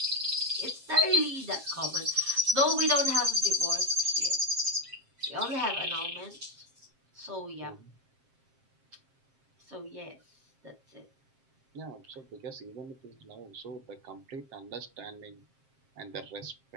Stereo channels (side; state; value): left; late; 7.5 ms